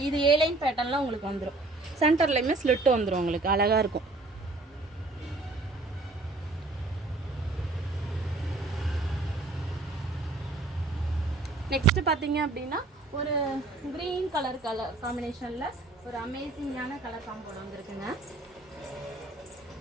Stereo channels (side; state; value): left; quieter; 3.2 dB